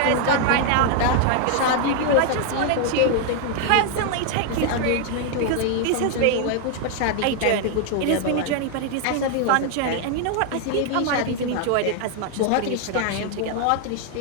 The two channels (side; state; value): both; different; correlation 0.00